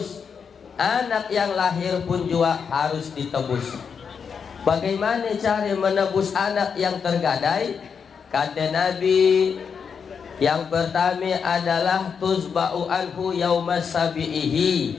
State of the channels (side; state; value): right; quieter; 6.4 dB